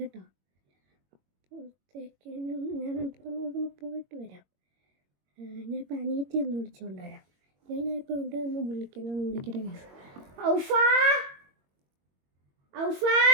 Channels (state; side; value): late; left; 21 ms